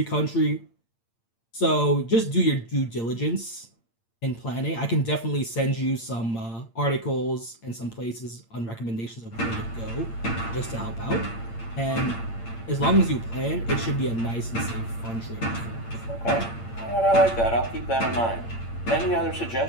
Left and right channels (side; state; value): right; late; 8.7 ms